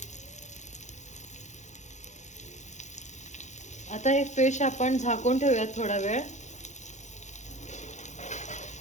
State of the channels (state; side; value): late; right; 0.34 ms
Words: आता हे फिश आपण झाकून ठेवूयात थोडा वेळ।